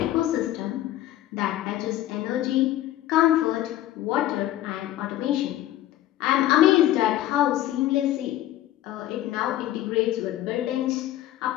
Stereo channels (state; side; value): quieter; right; 13.8 dB